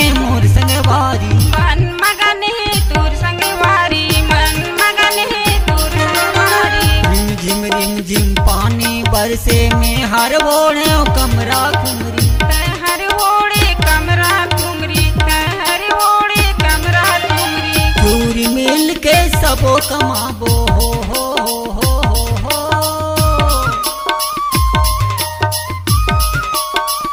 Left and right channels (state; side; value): identical; both; correlation 1.00